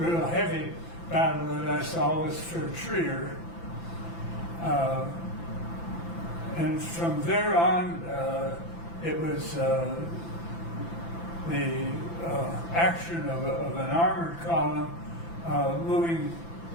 heavy battle that I saw was for Trier. And from there on, it was the action of an armored column moving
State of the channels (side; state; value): right; late; 5.9 ms